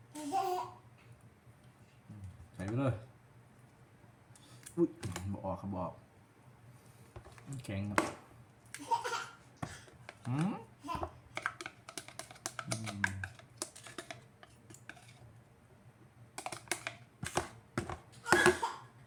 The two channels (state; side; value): identical; both; correlation 1.00